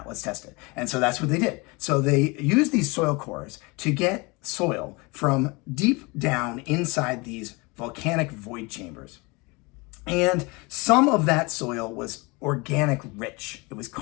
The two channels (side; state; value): right; quieter; 26.5 dB